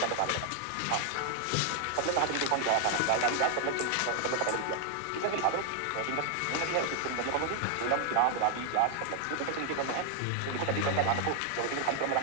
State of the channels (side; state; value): both; different; correlation 0.00